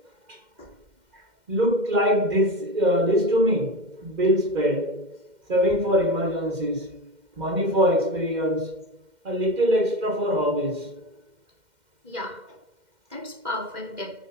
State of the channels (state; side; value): late; left; 2.1 ms